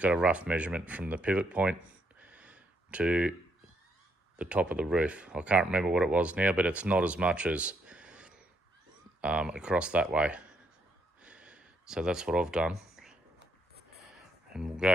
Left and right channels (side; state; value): both; normal; correlation 0.74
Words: got a rough measurement from the pivot point to the top of the roof. I can't remember what it was now, but it's not as much as across that way. So that's what I've done, and we'll